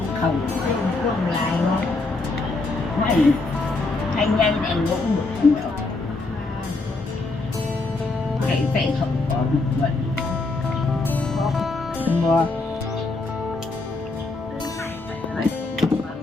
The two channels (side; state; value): right; quieter; 3.4 dB